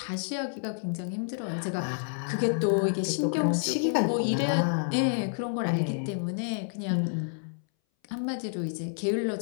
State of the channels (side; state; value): right; silent; 59 dB below the other